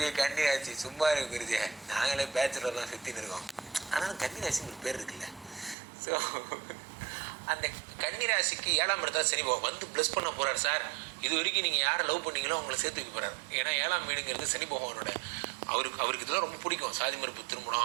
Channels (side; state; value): left; drops out; at 5.8 s